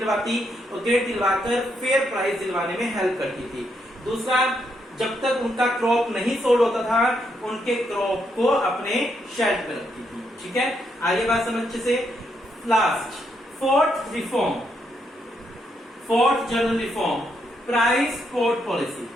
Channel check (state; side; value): normal; both; correlation 0.78